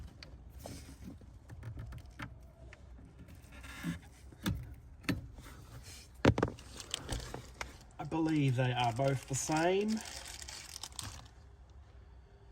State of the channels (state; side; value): identical; both; correlation 1.00